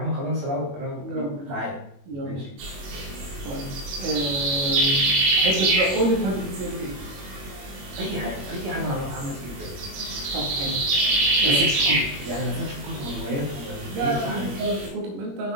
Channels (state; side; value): late; left; 21 ms